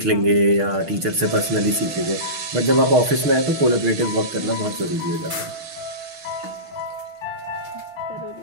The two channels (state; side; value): late; left; 6.5 ms